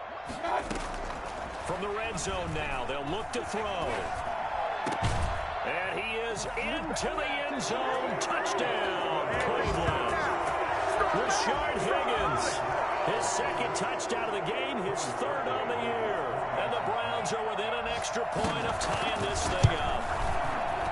From the red zone now, they'll look to throw. And he is into the end zone. Touchdown, Cleveland. Rashard Higgins, his 2nd touchdown of the game, his 3rd on the year. And the Browns are within an extra point of tying this thing up.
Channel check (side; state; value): both; identical; correlation 1.00